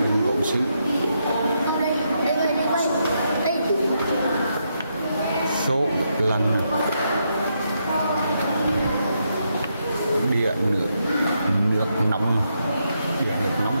gốm sứ, số lần địa nước nóng, địa nước nóng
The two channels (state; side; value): inverted; both; correlation -0.80